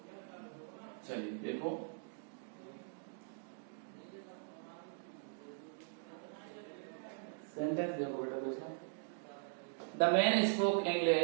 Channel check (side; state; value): left; silent; digital silence